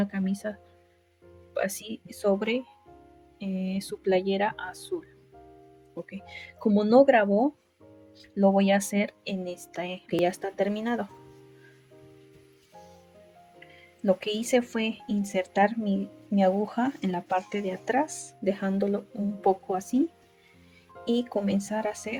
camisa así sobre su playera azul. Okay. Como no grabó, lo voy a hacer en esta que ya está terminado. Lo que hice fue insertar mi aguja en la parte de atrás, dejándolo un poco así, y comenzar a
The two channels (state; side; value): identical; both; correlation 1.00